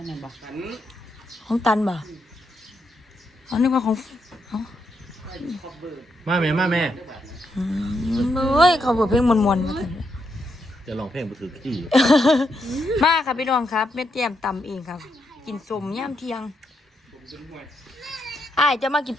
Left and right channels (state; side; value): normal; both; correlation 0.80